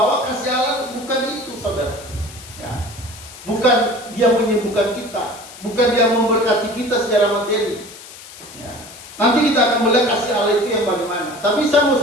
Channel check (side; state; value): left; noise; hiss, 17 dB below the sound